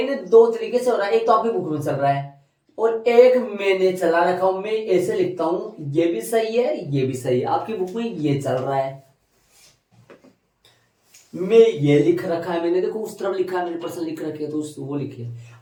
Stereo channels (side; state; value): both; identical; correlation 1.00